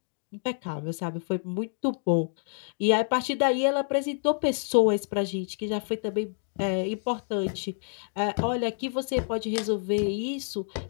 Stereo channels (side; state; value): right; silent; digital silence